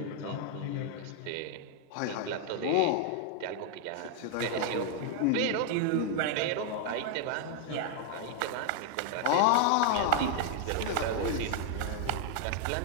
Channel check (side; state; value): both; different; correlation 0.00